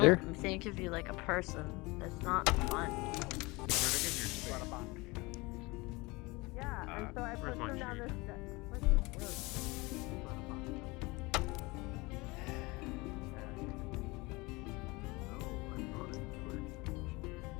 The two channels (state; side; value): quieter; right; 24.0 dB